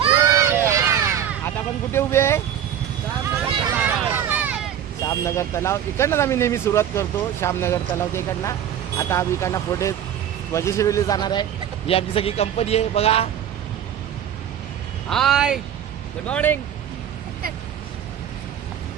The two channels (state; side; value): quieter; left; 9.8 dB